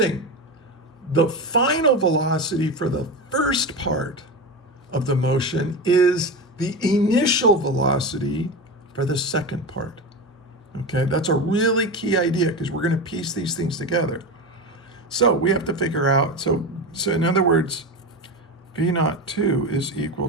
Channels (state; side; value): normal; both; correlation 0.21